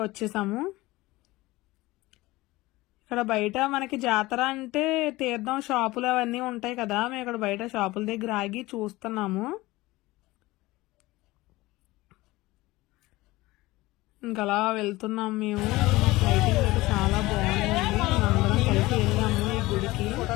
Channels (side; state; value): right; quieter; 19.6 dB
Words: వచ్చేసాము. ఇక్కడ బయట మనకి జాతర అంటే తీర్థం షాపులు అవన్నీ ఉంటాయి కదా, మేము ఇక్కడ బయట షాపుల దగ్గర ఆగి చూస్తున్నాము. ఇంకలా వెళ్తున్నాం మేము. లైటింగ్ అయితే చాలా బాగుందండి, అందరం కలిసి వెళ్ళాము ఈ గుడికి.